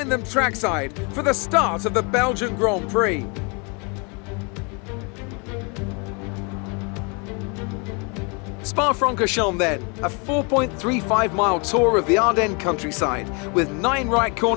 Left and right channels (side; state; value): right; quieter; 32.8 dB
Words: them trackside for the start of the Belgian Grand Prix. Spa-Francorchamps then, a 4.35-mile tour of the Ardennes countryside with 9 right